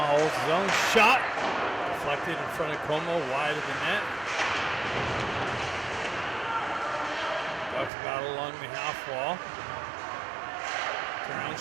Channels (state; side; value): drops out; left; at 7.9 s